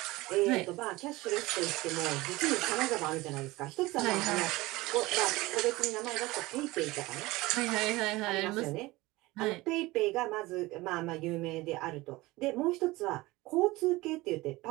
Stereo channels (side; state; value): left; quieter; 20.4 dB